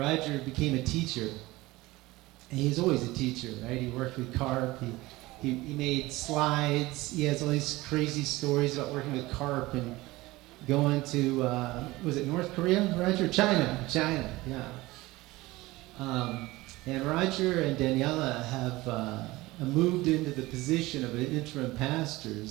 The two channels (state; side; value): quieter; left; 19.7 dB